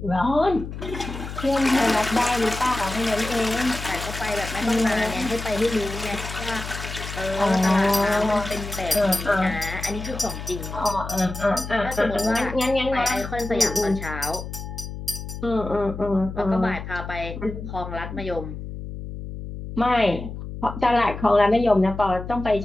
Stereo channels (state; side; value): noise; left; hum, 9 dB below the sound